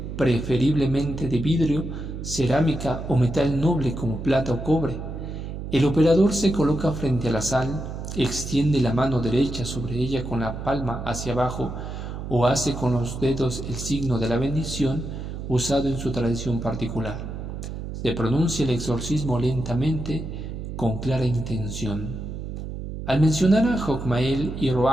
preferiblemente de vidrio, cerámica o metal noble como plata o cobre. El operador se coloca frente a la sal, extiende la mano derecha sobre ella con la palma hacia abajo o hace con los dedos el signo de la bendición usado en su tradición particular. Se pronuncia el exorcismo lentamente, con clara intención. Al mencionar a Jogmael y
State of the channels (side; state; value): right; noise; hum, 7 dB below the sound